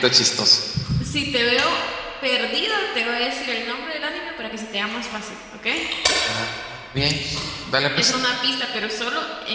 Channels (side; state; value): both; identical; correlation 1.00